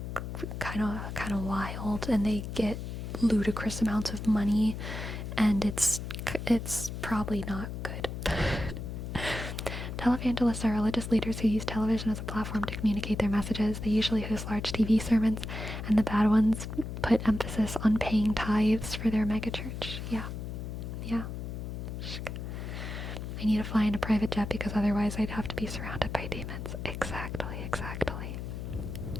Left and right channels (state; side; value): noise; left; hum, 6 dB below the sound